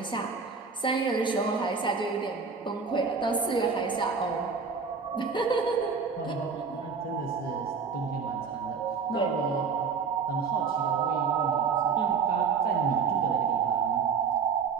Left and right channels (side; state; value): left; quieter; 5.6 dB